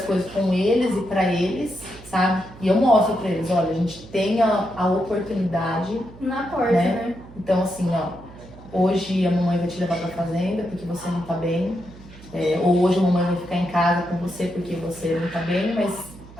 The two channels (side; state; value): right; noise; hum, 19 dB below the sound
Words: coisas com eles e para eles, sabe? E eu mostro para eles, olha, a gente tem a oportunidade na porta, né? Então, assim, hoje a mamãe vai te levar para a fazenda porque você não tá bem, ou hoje a mamãe vai ficar em casa com você porque você não tá bem, mas